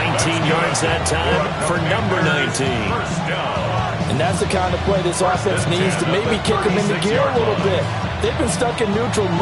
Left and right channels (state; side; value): identical; both; correlation 1.00